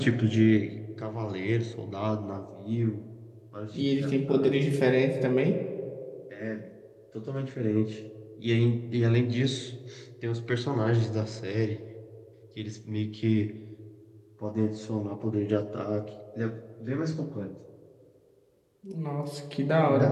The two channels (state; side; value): identical; both; correlation 1.00